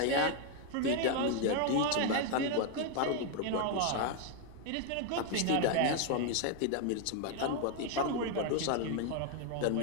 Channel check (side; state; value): both; different; correlation 0.01